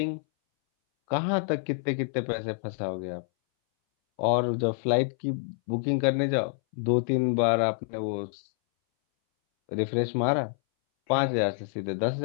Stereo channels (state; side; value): silent; right; 60 dB below the other